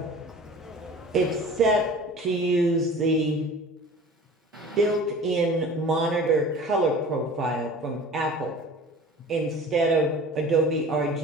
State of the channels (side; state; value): both; normal; correlation 0.42